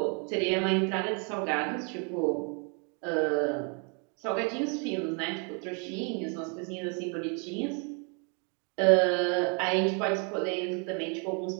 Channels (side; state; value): left; quieter; 37.2 dB